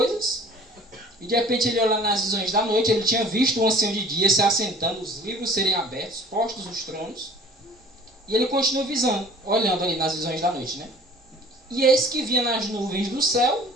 e de repente ele olhando nas visões da noite, ele tinha visto o ancião de dia se assentando, os livros serem abertos, postos os tronos, e ele continuou visando, olhando ali nas visões da noite, né? E eis que vinha nas nuvens do céu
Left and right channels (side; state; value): both; normal; correlation 0.49